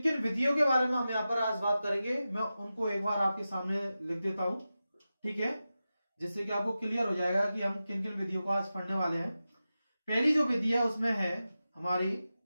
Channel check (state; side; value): inverted; both; correlation -0.93